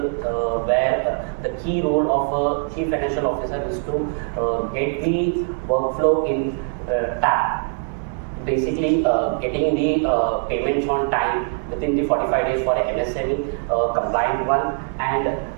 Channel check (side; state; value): left; silent; 64 dB below the other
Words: where the key role of a chief financial officer is to get the workflow in tap. Basically, getting the payments on time within the 45 days for a MSME compliant one, and